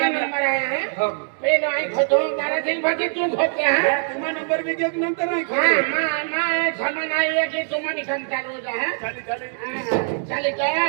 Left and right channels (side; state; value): left; silent; digital silence